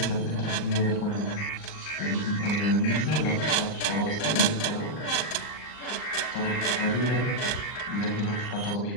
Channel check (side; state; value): right; late; 39 ms